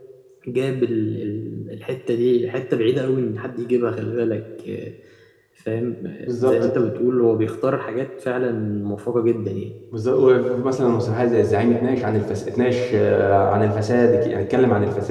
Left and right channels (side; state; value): both; identical; correlation 1.00